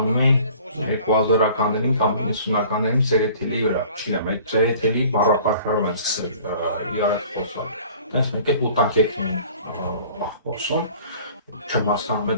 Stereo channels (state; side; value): inverted; both; correlation -0.49